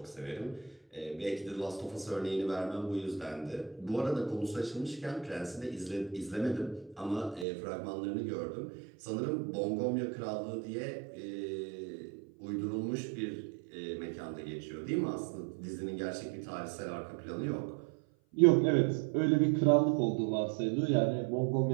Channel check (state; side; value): drops out; left; at 7.5 s